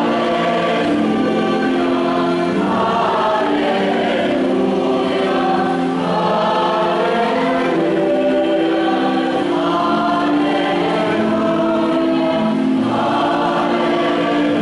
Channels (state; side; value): identical; both; correlation 1.00